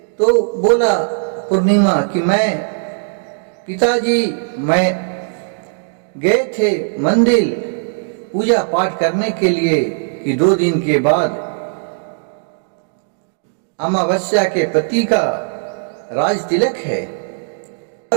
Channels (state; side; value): silent; left; digital silence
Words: तो बोला पूर्णिमा कि मैं, पिताजी, मैं गए थे मंदिर पूजा पाठ करने के लिए कि 2 दिन के बाद अमावस्या के पति का राज तिलक है।